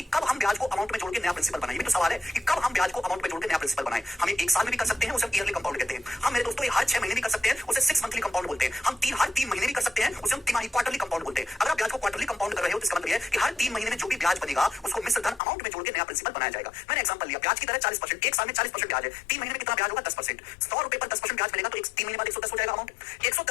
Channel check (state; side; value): drops out; right; at 15.4 s